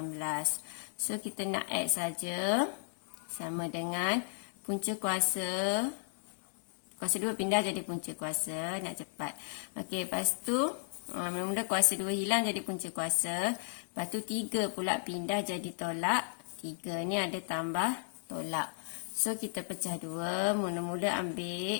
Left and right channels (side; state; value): right; silent; digital silence